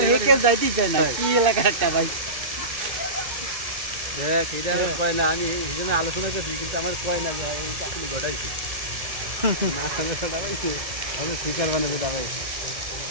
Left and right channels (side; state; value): left; late; 1.8 ms